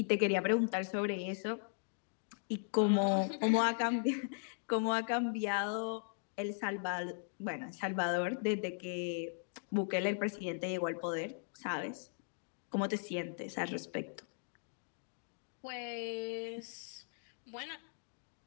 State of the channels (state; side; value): silent; right; digital silence